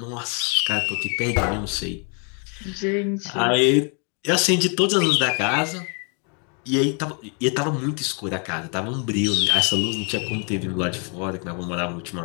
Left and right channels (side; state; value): right; quieter; 38.5 dB